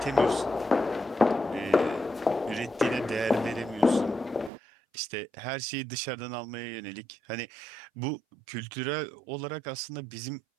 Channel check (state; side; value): drops out; left; at 4.5 s